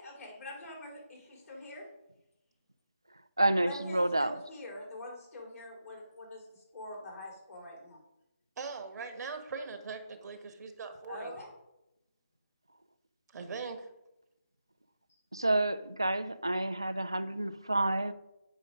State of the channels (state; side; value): inverted; both; correlation -0.88